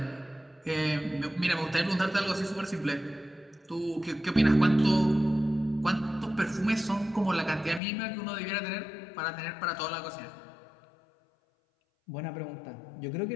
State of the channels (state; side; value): drops out; right; at 7.8 s